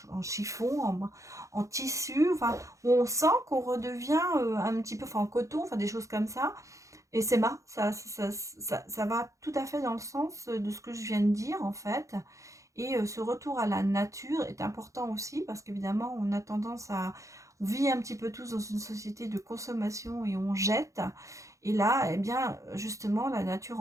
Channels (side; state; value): left; late; 0.15 ms